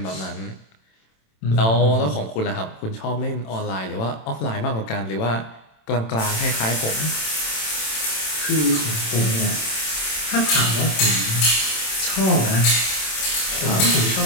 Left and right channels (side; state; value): right; late; 27 ms